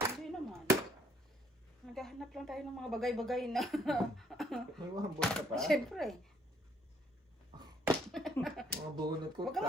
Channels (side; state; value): both; normal; correlation 0.66